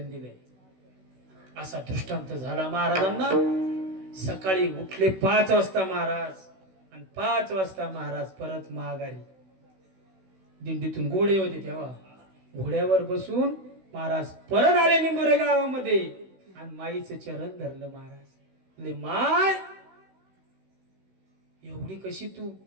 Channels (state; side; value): late; left; 16 ms